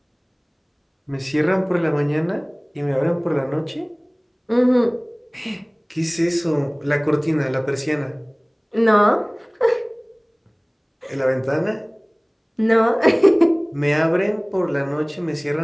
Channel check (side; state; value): both; identical; correlation 1.00